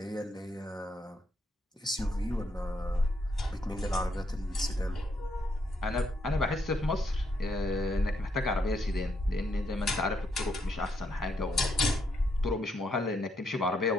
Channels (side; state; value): both; normal; correlation 0.76